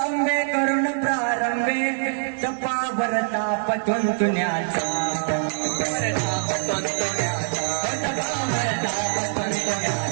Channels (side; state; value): left; silent; 63 dB below the other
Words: करुण प्रारंभे, तपा भरता पतून तुण्याचा